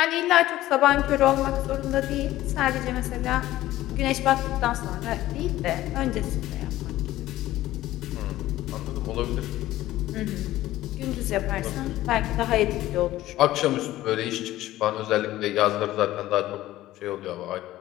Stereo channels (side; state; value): right; quieter; 15.4 dB